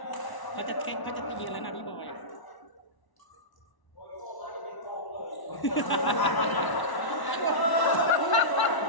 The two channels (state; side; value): late; right; 1.0 ms